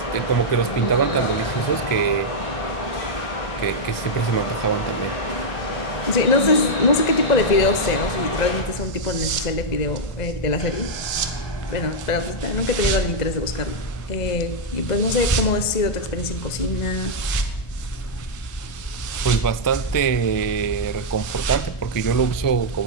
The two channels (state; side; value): late; right; 1.5 ms